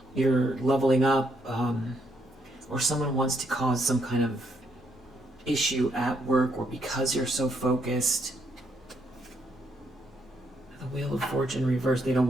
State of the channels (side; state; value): both; normal; correlation 0.75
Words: you're leveling up, or someone wants to cause some kind of issue at work, or because you're so focused. The Wheel of Fortune reversed. They don't